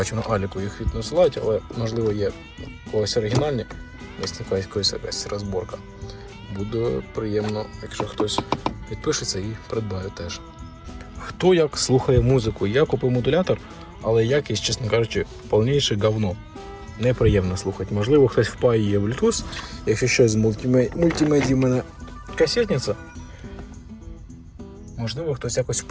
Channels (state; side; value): identical; both; correlation 1.00